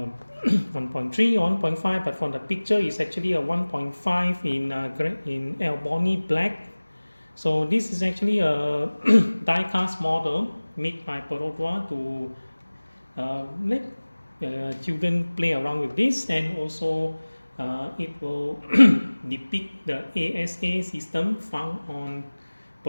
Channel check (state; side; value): inverted; both; correlation -1.00